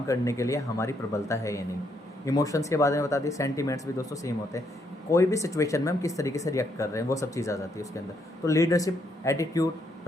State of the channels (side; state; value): both; normal; correlation 0.74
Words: करने के लिए हमारी प्रबलता है या नहीं। इमोशंस के बारे में बता दिए, सेंटीमेंट्स भी दोस्तों सेम होते हैं, कोई भी सिचुएशन में हम किस तरीके से रिएक्ट कर रहे हैं, वो सब चीज़ आ जाती है उसके अंदर। तो leadership, attitude,